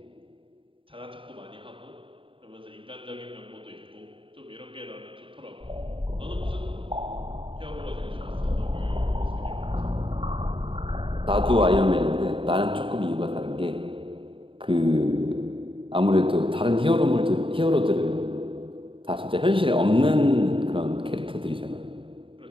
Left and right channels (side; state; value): left; late; 0.25 ms